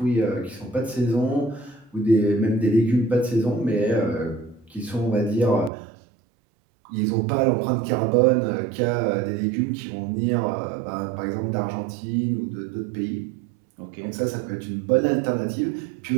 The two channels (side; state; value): left; drops out; at 5.7 s